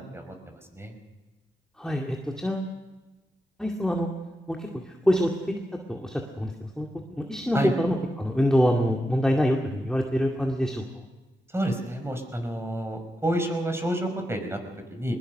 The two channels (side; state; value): both; normal; correlation 0.88